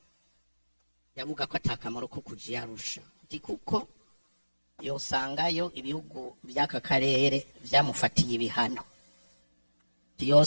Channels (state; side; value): inverted; both; correlation -1.00